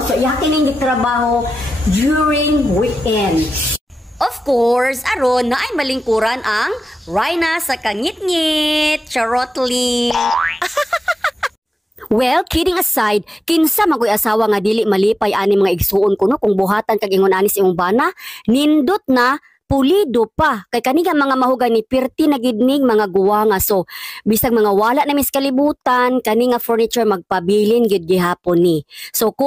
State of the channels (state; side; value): normal; both; correlation 0.95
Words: So iyang kining gitrabaho during weekends. Of course, aron na ay malingkuran ang Rhina sa Kangit-ngit. Charotly. Well, kidding aside, kinsa magoy asawa nga dili malipay ani mga igsuon kuno kung buhatan kag ingon ani sa imong bana, nindot na pulido pa kay kani nga mga mahugani pirti na gidning mga guwanga. So bisag mga wala na mis kalibutan kani nga furniture magpabilin gid gihapon ni. So